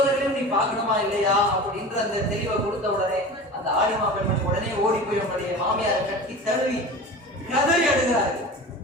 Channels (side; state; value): both; normal; correlation 0.34